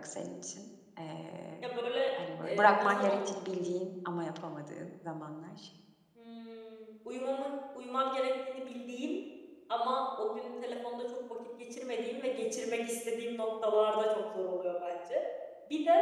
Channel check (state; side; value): identical; both; correlation 1.00